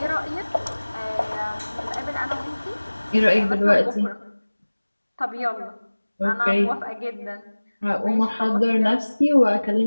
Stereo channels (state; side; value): inverted; both; correlation -1.00